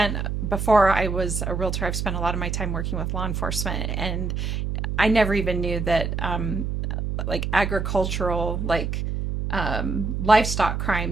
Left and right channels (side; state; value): right; noise; hum, 2 dB below the sound